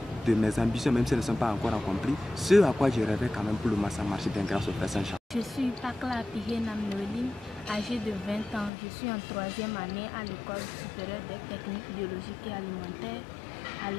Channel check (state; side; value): drops out; right; at 8.7 s